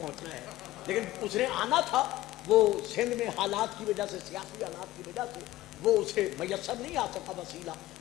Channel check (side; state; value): right; quieter; 16.2 dB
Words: ہے، لیکن اس نے آنا تھا، وہ سندھ میں حالات کی وجہ سے، سیاسی حالات کی وجہ سے وہ اسے میسر نہیں آ سکا وسیلہ